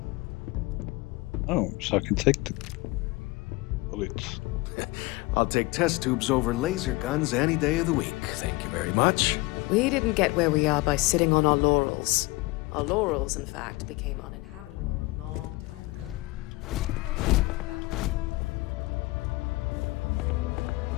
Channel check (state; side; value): quieter; right; 22.8 dB